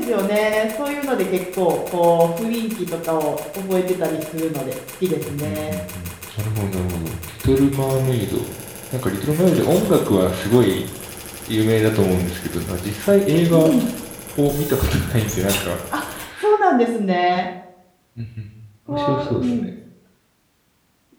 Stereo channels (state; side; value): identical; both; correlation 1.00